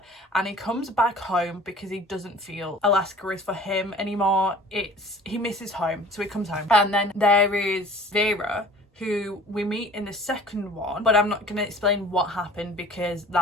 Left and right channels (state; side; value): normal; both; correlation 0.46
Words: and he comes back home because he doesn't feel Alaska is for him anymore. He misses home, so he comes home. And then there is Vera, who we meet in the second one, but I'm not going to explain what happened because